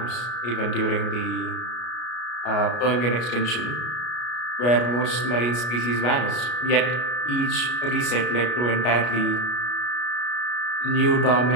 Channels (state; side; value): late; right; 33 ms